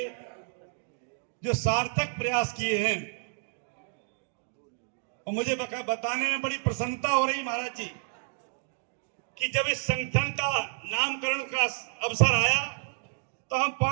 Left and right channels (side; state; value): left; silent; digital silence